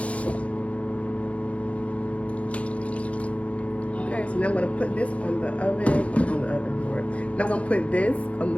Okay, so now I'm going to put this on the oven, Now I'm going to put this on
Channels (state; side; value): late; right; 0.064 ms